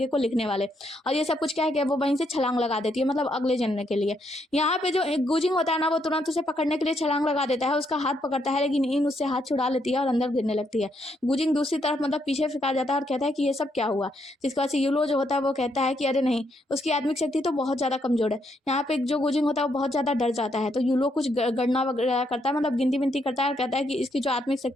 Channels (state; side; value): normal; both; correlation 0.76